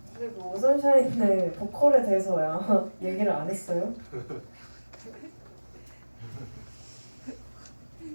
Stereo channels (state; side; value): inverted; both; correlation -1.00